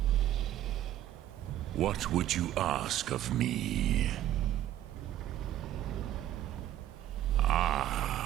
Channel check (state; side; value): quieter; left; 12.6 dB